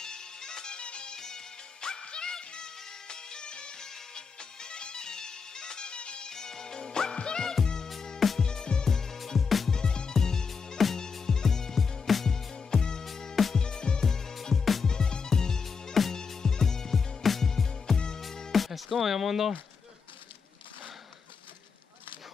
Ezt komolyan mondom.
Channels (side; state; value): right; quieter; 5.5 dB